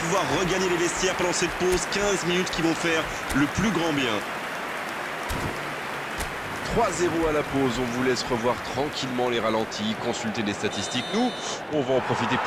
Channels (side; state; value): both; identical; correlation 1.00